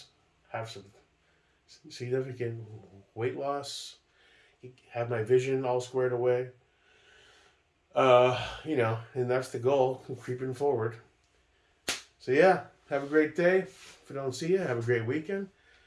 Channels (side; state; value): both; identical; correlation 1.00